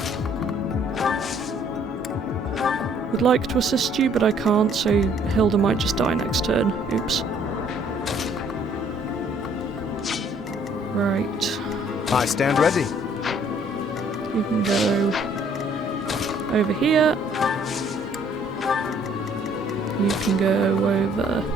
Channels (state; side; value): normal; both; correlation 0.61